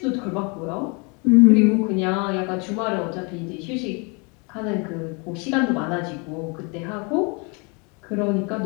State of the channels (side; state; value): right; quieter; 31.8 dB